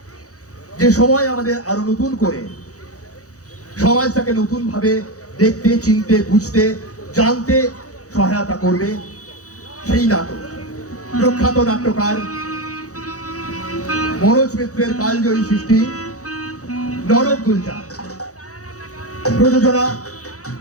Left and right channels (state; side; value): late; right; 0.66 ms